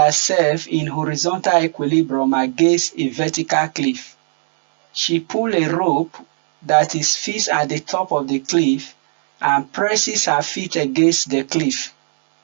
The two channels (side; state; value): left; silent; digital silence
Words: in horizontal equilibrium against a vertical cliff. She pulls a rope that is fixed at the top of the cliff and presses her feet against the cliff.